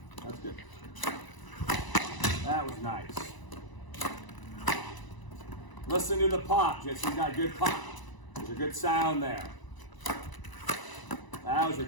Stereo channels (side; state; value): right; late; 1.0 ms